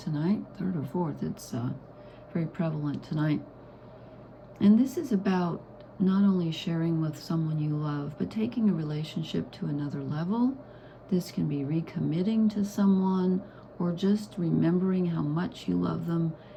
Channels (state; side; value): identical; both; correlation 1.00